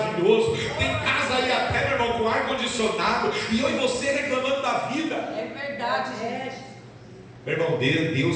tem casa aí até, meu irmão, com ar condicionado, e eu e você reclamando da vida. É verdade, gente. Meu irmão,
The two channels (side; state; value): both; identical; correlation 1.00